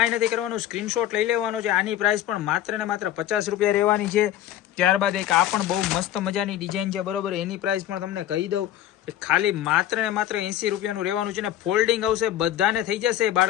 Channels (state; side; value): quieter; right; 12.2 dB